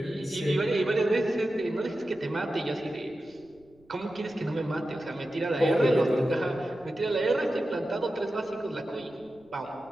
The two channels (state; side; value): noise; right; rumble, 30 dB below the sound